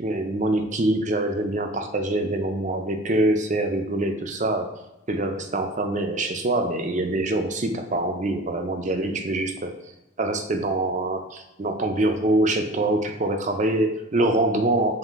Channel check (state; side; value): normal; both; correlation 0.39